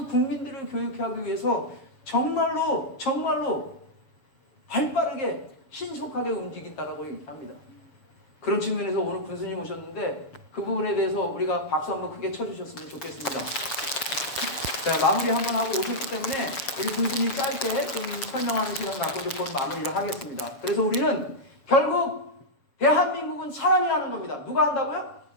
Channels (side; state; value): right; late; 6.7 ms